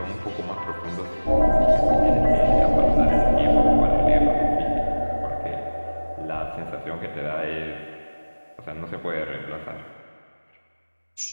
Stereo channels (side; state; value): both; inverted; correlation -1.00